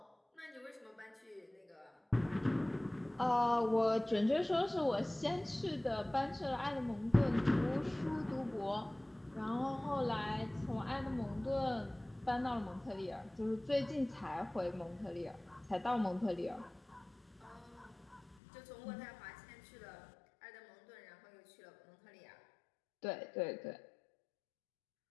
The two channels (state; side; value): drops out; right; at 18.4 s